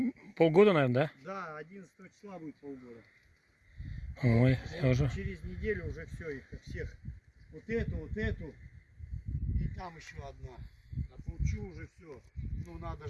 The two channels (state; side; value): identical; both; correlation 1.00